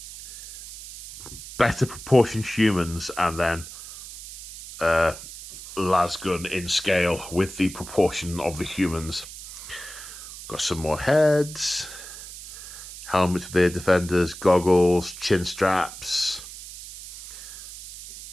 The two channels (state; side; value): noise; right; hiss, 13 dB below the sound